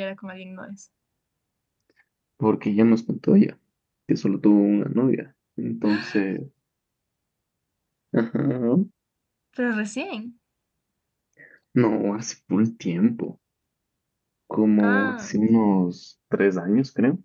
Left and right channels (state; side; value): identical; both; correlation 1.00